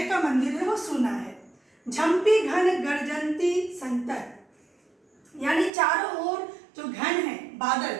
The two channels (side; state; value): left; drops out; at 5.7 s